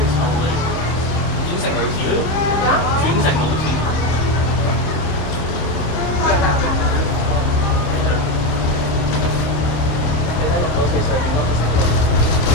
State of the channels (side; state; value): right; late; 26 ms